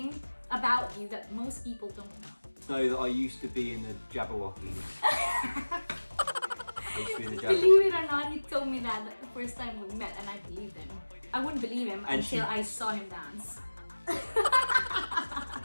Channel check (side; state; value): both; inverted; correlation -1.00